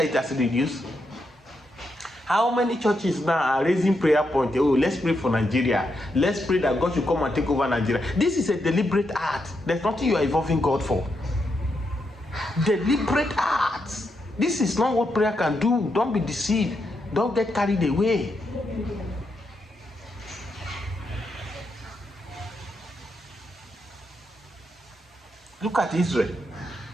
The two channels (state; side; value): normal; both; correlation 0.82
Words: it has reduced? How many churches now are raising prayer point? Oh, let's pray for Nigeria. Let's pray that God should come and take over Nigeria. This is a deliberate act. There's nothing you are involving God for. Deliberate acts. This is not what prayer can do. Don't be deceived. Don't get carried away. Look at Israel.